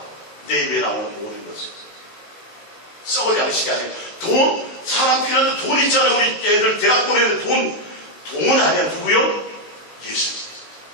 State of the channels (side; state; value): right; late; 19 ms